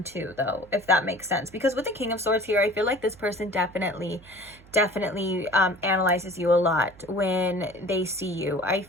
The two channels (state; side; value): noise; right; hum, 24 dB below the sound